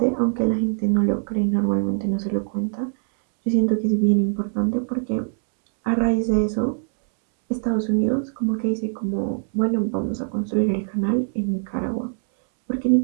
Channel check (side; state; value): left; silent; 64 dB below the other